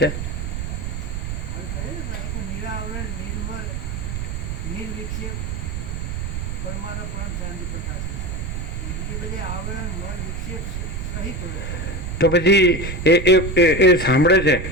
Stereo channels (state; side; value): noise; right; rumble, 4 dB below the sound